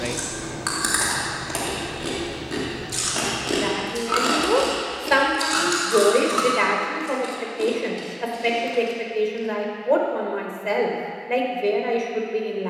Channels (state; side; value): identical; both; correlation 1.00